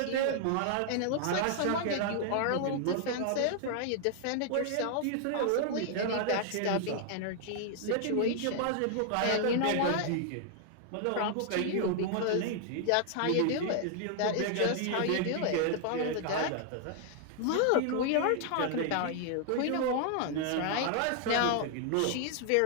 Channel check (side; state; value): both; different; correlation 0.00